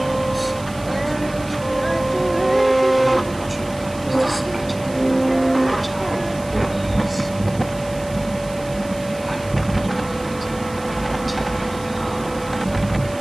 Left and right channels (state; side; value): noise; right; hiss, 19 dB below the sound